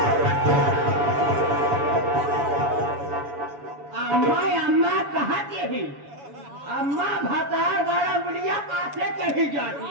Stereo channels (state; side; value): late; left; 7.0 ms